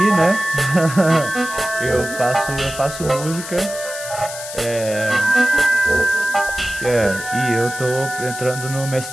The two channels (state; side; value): noise; left; hiss, 10 dB below the sound